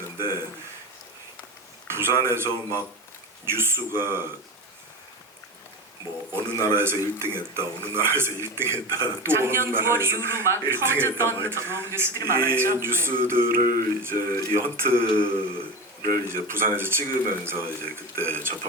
부산에서 막 뉴스가 뭐 어느 나라에서 1등했다, 어느 나라에서 1등했다, 또 작년 어느 9월 나라에서 이후로 막 1등했다, 퍼졌던 뉴스들이 이 많았죠. 뉴스들을 이제 이 헌트를 이제 부산에서 찍으면서 이제 그때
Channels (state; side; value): normal; both; correlation 0.24